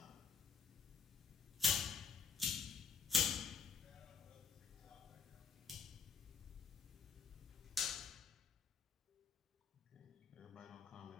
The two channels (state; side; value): quieter; right; 5.7 dB